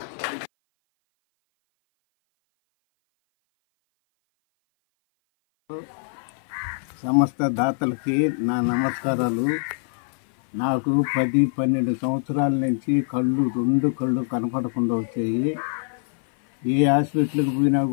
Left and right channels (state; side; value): silent; right; 57 dB below the other